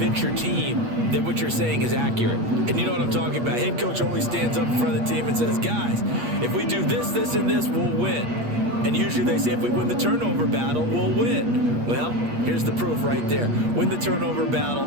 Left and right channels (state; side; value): late; left; 8.4 ms